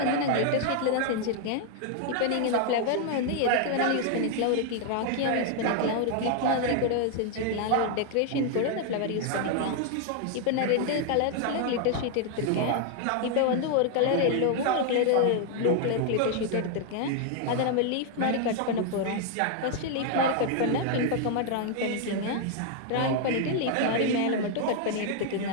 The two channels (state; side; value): different; both; correlation 0.00